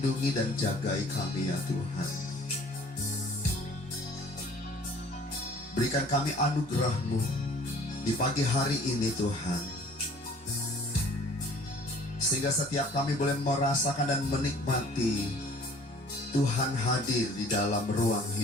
dan jagai kami ya Tuhan. Berikan kami anugerah-Mu di pagi hari ini Tuhan, sehingga setiap kami boleh merasakan dan menikmati Tuhan hadir di dalam ruang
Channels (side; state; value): both; normal; correlation 0.52